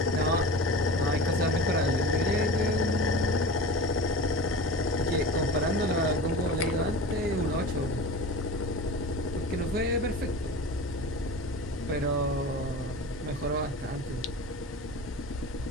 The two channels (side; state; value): both; normal; correlation 0.32